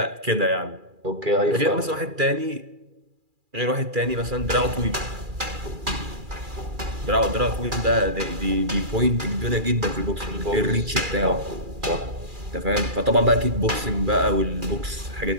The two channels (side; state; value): left; late; 2.4 ms